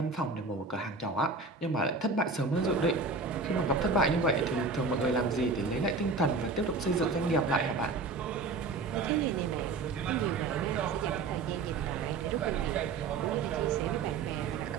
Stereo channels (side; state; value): left; quieter; 4.0 dB